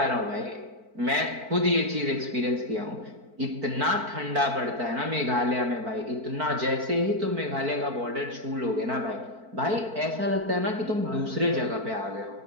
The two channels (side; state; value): left; late; 4.5 ms